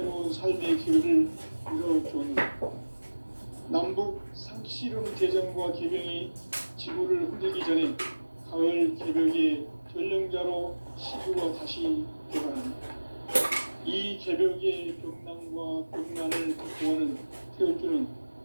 삶의 기회를 이뤄주었느라 남북 상씨름 대전과 개병이 지구를 흔들기 전에 가을 개벽의 전령자로 시구가 다시 개발합니다. 이 개벽의 벽난과 벽난을 극복하는 태울주는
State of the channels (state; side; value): inverted; both; correlation -1.00